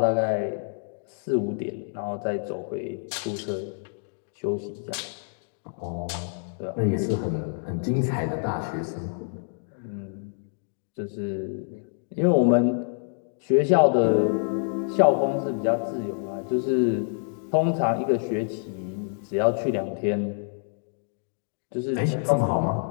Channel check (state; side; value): silent; right; digital silence